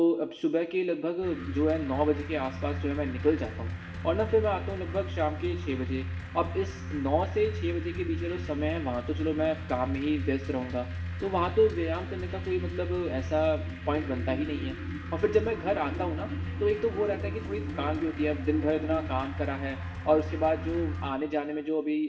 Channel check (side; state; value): both; identical; correlation 1.00